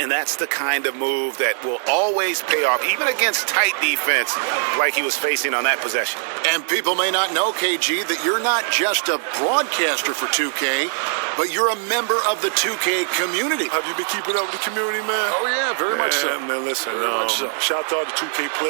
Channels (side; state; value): left; silent; digital silence